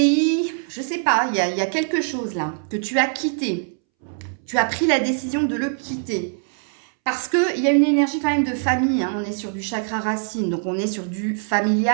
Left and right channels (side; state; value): left; silent; 64 dB below the other